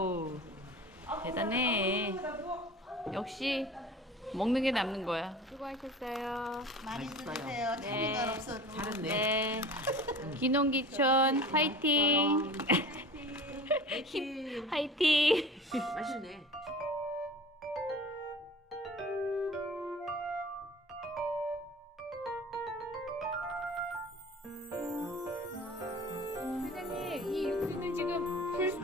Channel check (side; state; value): both; normal; correlation 0.40